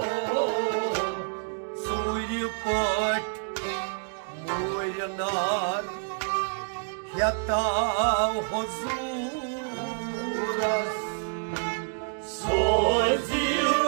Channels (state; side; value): silent; left; digital silence